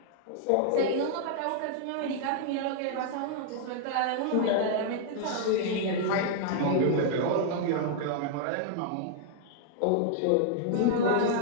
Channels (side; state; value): both; different; correlation -0.01